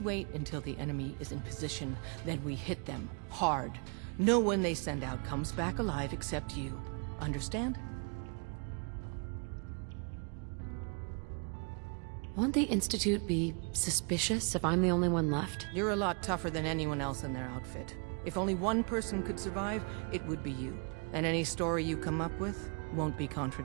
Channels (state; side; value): quieter; left; 36.7 dB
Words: until the enemy is in position, then we hit them hard. No one they send out comes back alive except you. Understand? Won't the Institute be suspicious if I'm the only one left? You're a lot tougher than anyone else in their outfit. If only one person could survive, it would be you. And any story you come up with won't be